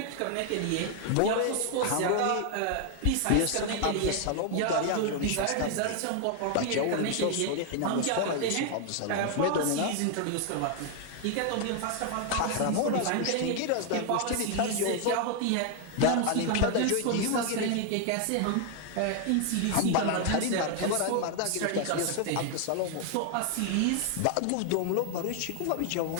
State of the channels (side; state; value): both; different; correlation 0.00